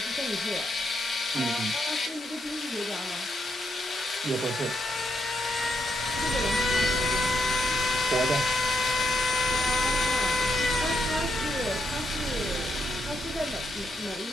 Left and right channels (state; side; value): normal; both; correlation 0.79